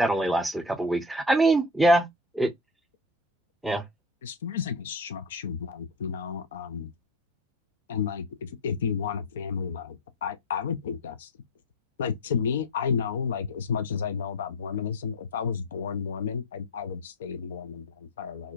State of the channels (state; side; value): normal; both; correlation 0.25